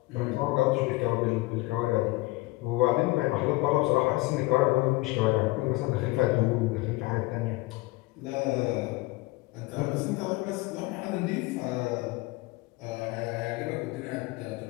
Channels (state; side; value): quieter; right; 21.4 dB